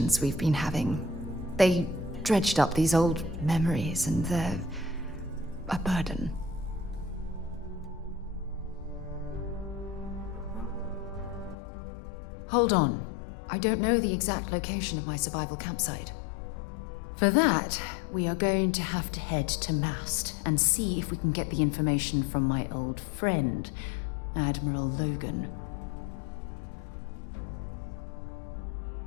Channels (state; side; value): drops out; right; at 11.6 s